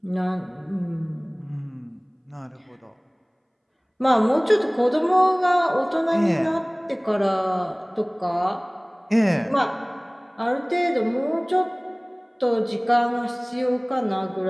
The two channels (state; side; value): identical; both; correlation 1.00